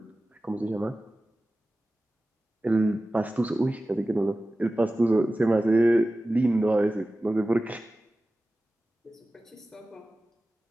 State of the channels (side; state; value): both; normal; correlation 0.96